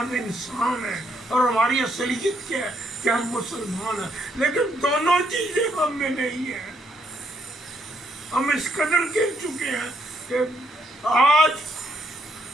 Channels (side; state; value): both; normal; correlation 0.73